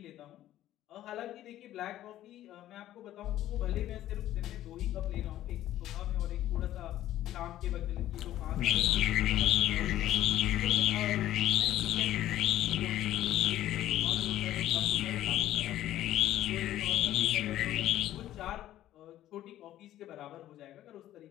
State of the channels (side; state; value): right; quieter; 13.3 dB